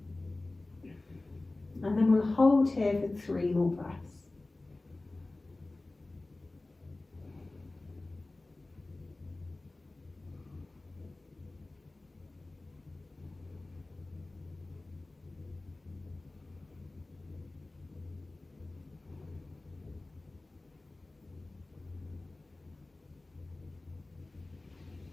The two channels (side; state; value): right; quieter; 3.0 dB